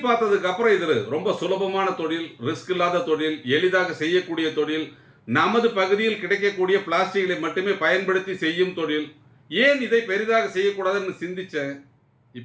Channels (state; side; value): identical; both; correlation 1.00